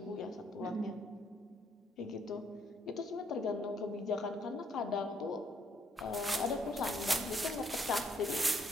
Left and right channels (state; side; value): normal; both; correlation 0.70